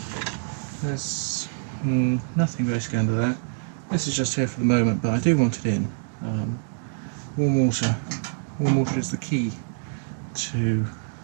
There's nothing basically under there. This is just here for the moment, but I do want it in. Warm water. Warm water is the key to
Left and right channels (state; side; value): silent; left; digital silence